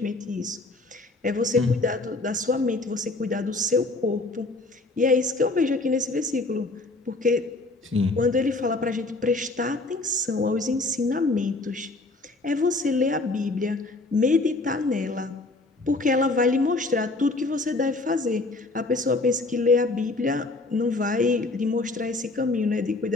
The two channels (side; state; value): right; quieter; 3.1 dB